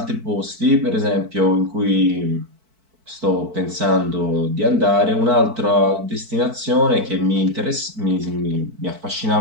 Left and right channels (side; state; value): left; late; 4.5 ms